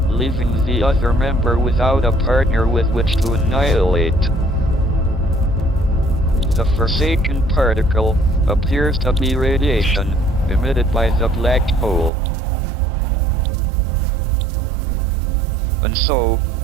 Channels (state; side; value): drops out; left; at 12.1 s